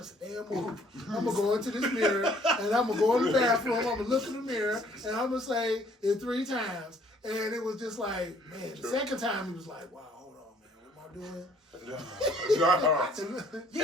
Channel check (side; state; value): both; normal; correlation 0.60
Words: a damn movie. I'm gonna go into this mirror and I'm gonna go in the bathroom. I'm gonna look in the mirror and I'm gonna say it 3 times. And it was just like, man, the second time he was like, wow, hold on, man, what am I start doing. No.